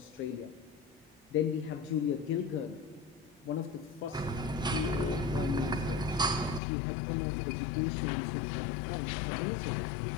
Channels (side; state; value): right; drops out; at 6.6 s